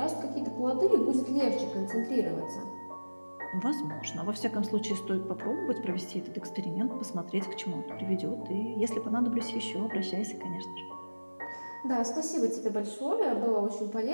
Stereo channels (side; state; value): both; inverted; correlation -1.00